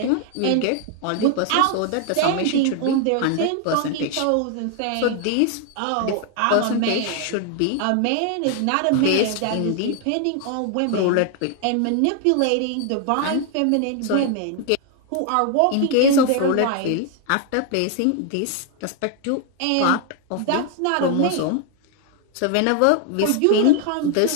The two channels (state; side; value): different; both; correlation 0.00